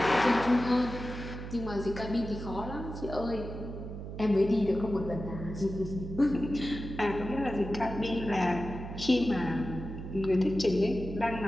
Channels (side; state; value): right; noise; hum, 9 dB below the sound